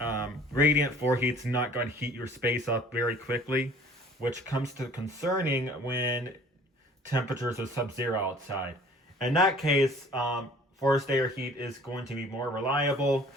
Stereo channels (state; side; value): normal; both; correlation 0.52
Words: radiant floor heat's not going to heat your space up very quickly, which comes to concerning when temperatures are sub-zero outside. In that case, forced air heat is going to be more reliable,